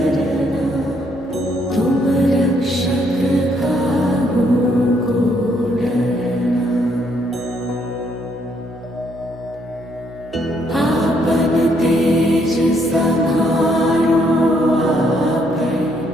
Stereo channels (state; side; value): noise; right; hum, 20 dB below the sound